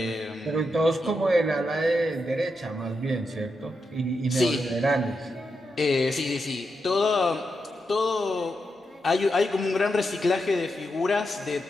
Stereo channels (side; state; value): both; normal; correlation 0.85